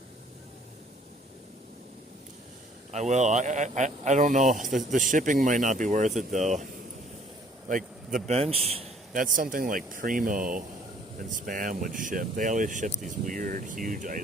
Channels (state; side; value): normal; both; correlation 0.59